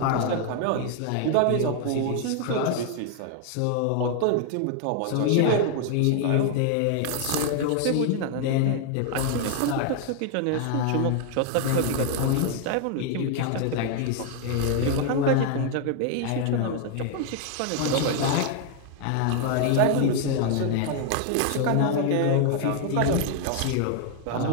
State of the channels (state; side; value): different; both; correlation 0.00